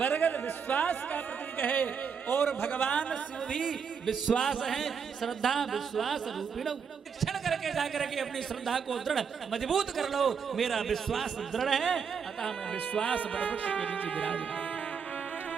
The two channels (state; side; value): quieter; left; 6.5 dB